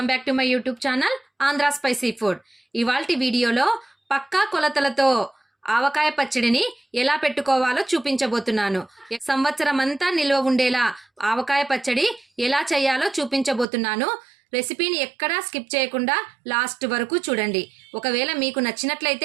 back to my YouTube channel Andhra spicy food. ఇవాల్టి వీడియోలో పక్కా కొలతలతో ఆవకాయ పచ్చడిని ఎలా పెట్టుకోవాలో చూపించబోతున్నాను. సంవత్సరం అంతా నిల్వ ఉండేలా ఆవకాయ పచ్చడి ఎలా చేయాలో చూపించబోతున్నాను. రెసిపీని ఎక్కడా స్కిప్ చేయకుండా లాస్ట్ వరకు చూడండి. ఒకవేళ మీకు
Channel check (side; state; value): left; drops out; at 13.7 s